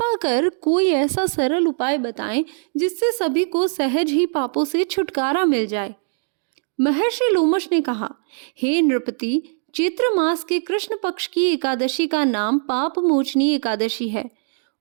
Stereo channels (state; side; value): silent; left; digital silence